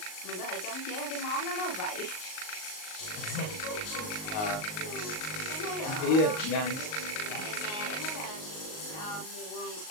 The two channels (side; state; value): right; late; 38 ms